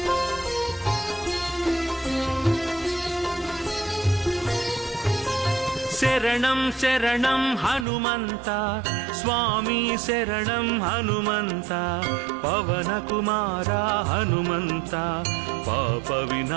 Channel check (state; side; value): drops out; left; at 7.9 s